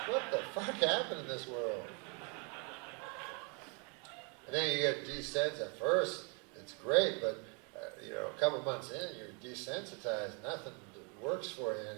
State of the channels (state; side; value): quieter; left; 34.8 dB